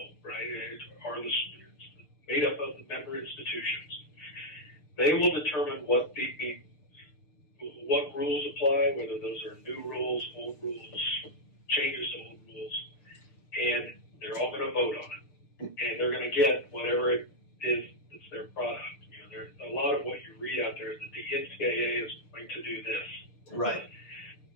right? It's made up of the member institutions. They will determine what rules apply, whether those are new rules, old rules, changes to old rules, and they're all going to vote on it, and they're going to get whatever it is that's their product. There's a lot of what you read out there is that the NCAA is going to do this. Right.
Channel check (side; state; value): right; late; 6.7 ms